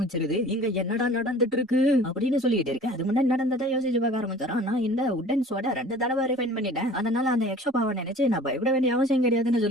இங்க என்னடா நடந்துட்டு இருக்கு அப்படின்னு சொல்லிட்டு இருக்கு. அது முன்னாடி நடந்ததை யோசிச்சு பார்க்க ஆரம்பிச்சாரான். நான் இந்த உட்டன் சோட 2 தடவை ரிஃபைன் பண்ணிட்டேன், அதனால அந்த எக்ஸ்ட்ரா பவர் நினைச்சு நான் பயப்பட வேண்டிய அவசியம் கிடையாதுன்னு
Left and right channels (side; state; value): both; normal; correlation 0.45